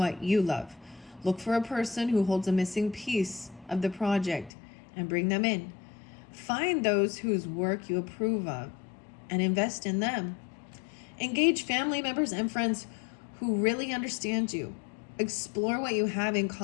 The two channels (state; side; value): drops out; right; at 4.5 s